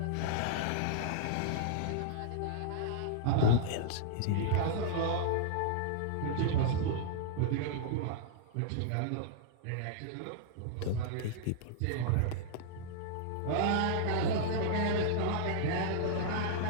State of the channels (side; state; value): both; different; correlation -0.02